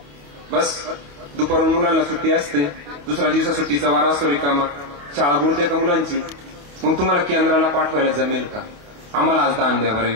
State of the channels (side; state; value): left; late; 28 ms